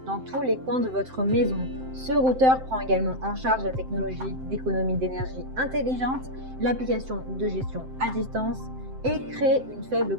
dans tous les coins de votre maison. Ce routeur prend également en charge la technologie d'économie d'énergie intelligente, l'application de gestion à distance et crée une faible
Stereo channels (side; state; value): left; late; 7.7 ms